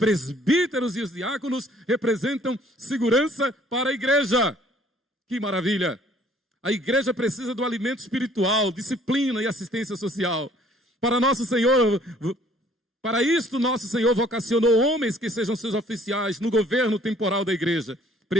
e os diáconos representam segurança para a igreja. Que maravilha! A igreja precisa do alimento espiritual, disciplina e assistência social. Para isto, nosso Senhor vocacionou homens que sejam seus oficiais no governo temporal da igreja,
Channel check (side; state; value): both; normal; correlation 0.58